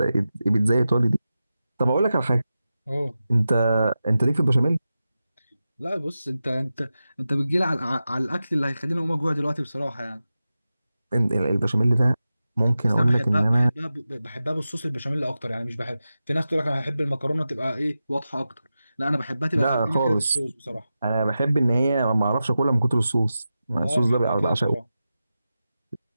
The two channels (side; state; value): both; inverted; correlation -0.93